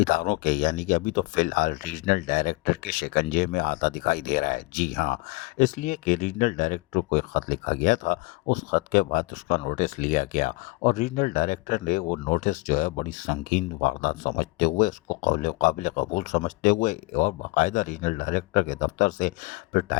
کے یعنی کہ ابھی تو فی الحال ریجنل ڈائریکٹر کے شکنجے میں آتا دکھائی دے رہا ہے۔ جی ہاں، اس لیے کہ ریجنل ڈائریکٹر کو ایک خط لکھا گیا تھا، اس خط کے بعد اس کا نوٹس لیا گیا اور ریجنل ڈائریکٹر نے وہ نوٹس جو ہے بڑی سنگین واردات سمجھتے ہوئے اس کو قابل قبول سمجھتے ہوئے اور باقاعدہ ریجنل ڈائریکٹر کے دفتر سے پھر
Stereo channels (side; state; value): right; quieter; 24.6 dB